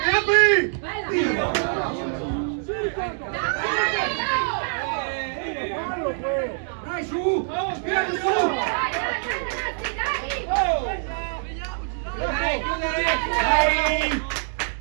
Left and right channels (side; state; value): left; silent; digital silence